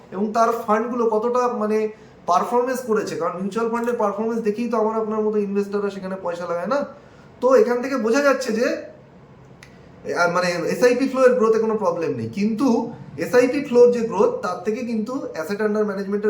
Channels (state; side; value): identical; both; correlation 1.00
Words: এবং তার ফান্ডগুলো কতটা মানে পারফরমেন্স করেছে। কারণ মিউচুয়াল ফান্ডের পারফরমেন্স দেখেই তো আমার আপনার মতো ইনভেস্টাররা সেখানে পয়সা লাগায় না। তো এখান থেকে বোঝা যাচ্ছে যে মানে এসআইপি ফ্লো এর গ্রোথে কোনো প্রবলেম নেই, কিন্তু এসআইপি ফ্লোর যে গ্রোথ, তার থেকে কিন্তু অ্যাসেট আন্ডার